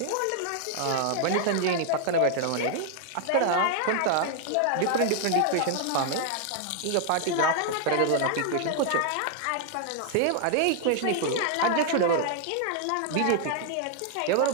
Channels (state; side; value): different; both; correlation 0.00